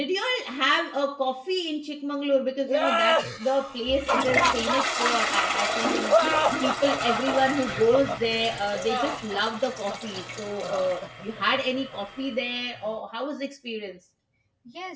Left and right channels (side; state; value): both; identical; correlation 1.00